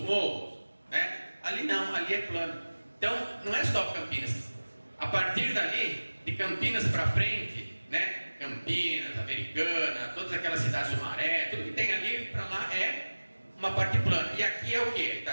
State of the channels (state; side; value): inverted; both; correlation -1.00